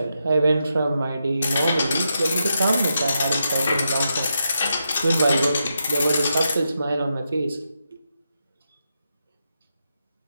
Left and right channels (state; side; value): inverted; both; correlation -0.85